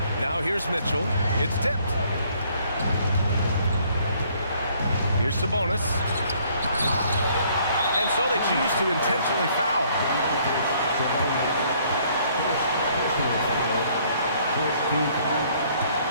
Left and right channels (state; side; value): inverted; both; correlation -0.63